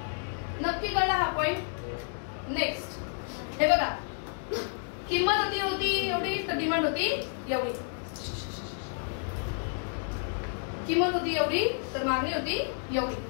नक्की कळला हा पॉइंट. नेक्स्ट हे बघा, किंमत होती एवढी तर डिमांड होती एवढी. किंमत होती एवढी तर मागणी होती एवढी.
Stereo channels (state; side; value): silent; right; 58 dB below the other